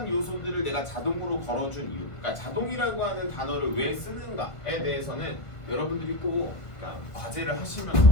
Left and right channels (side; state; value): right; late; 1.5 ms